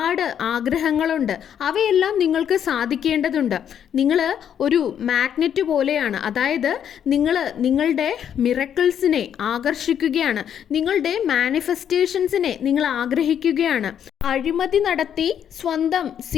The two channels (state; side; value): quieter; right; 9.0 dB